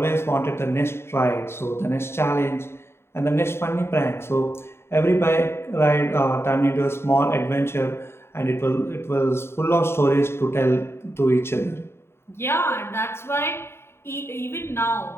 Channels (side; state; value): right; late; 0.12 ms